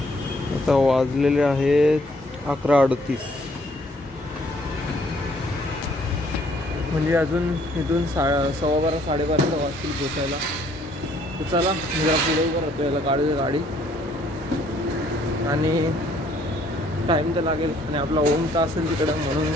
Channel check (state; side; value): normal; both; correlation 0.64